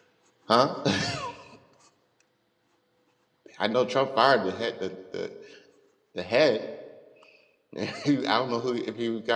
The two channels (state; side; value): identical; both; correlation 1.00